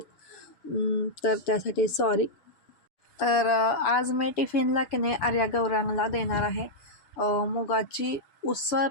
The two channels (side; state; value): right; late; 7.0 ms